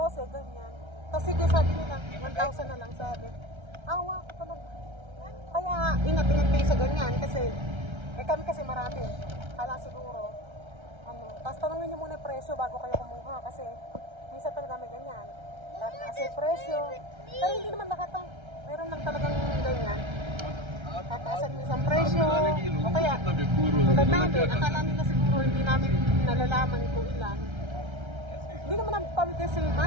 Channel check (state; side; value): late; left; 1.3 ms